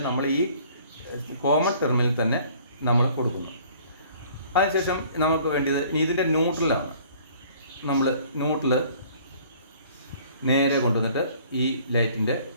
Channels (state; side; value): inverted; both; correlation -0.54